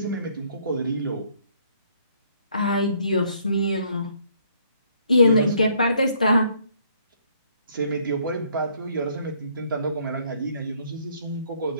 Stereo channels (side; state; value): both; inverted; correlation -0.65